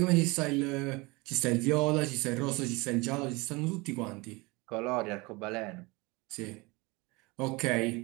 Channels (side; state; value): left; quieter; 24.9 dB